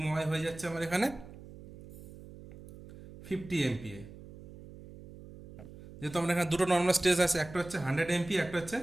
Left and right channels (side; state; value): right; noise; hum, 17 dB below the sound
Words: ওয়াই হয়ে যাচ্ছে আমার এখানে 50 MPa। যেহেতু আমরা এখানে দুটো নর্মাল স্ট্রেস আছে, একটা হচ্ছে 100 MPa, একটা হচ্ছে